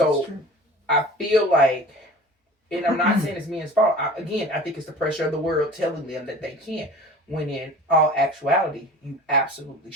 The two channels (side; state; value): both; normal; correlation 0.41